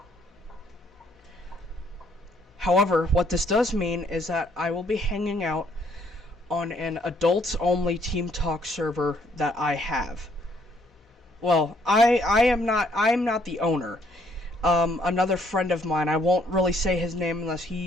However, what this does mean is that I will be hanging out on an adults-only Team Talk server that I have. Well, I am not the owner. Another friend of mine, I won't really say his name unless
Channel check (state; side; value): normal; both; correlation 0.66